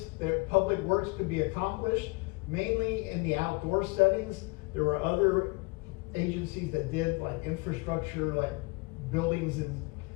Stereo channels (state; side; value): quieter; right; 27.6 dB